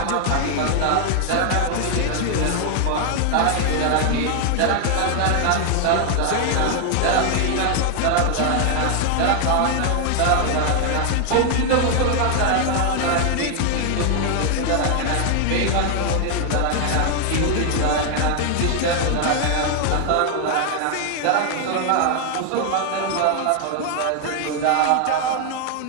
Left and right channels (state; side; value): different; both; correlation 0.00